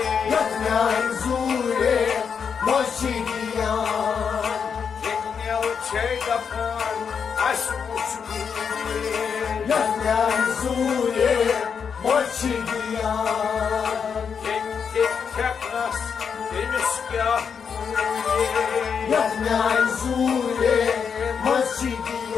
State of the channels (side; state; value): right; quieter; 6.6 dB